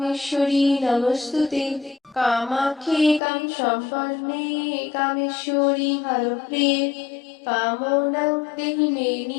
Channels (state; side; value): drops out; right; at 3.2 s